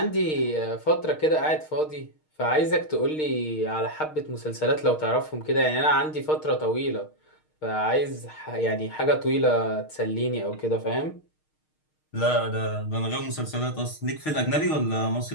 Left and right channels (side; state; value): right; late; 6.5 ms